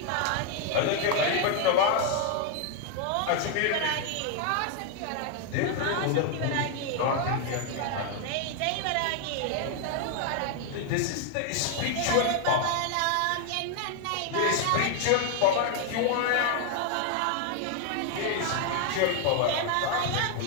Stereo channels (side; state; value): both; different; correlation 0.00